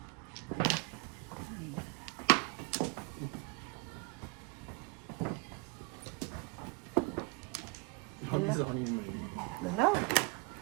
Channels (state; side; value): quieter; left; 28.6 dB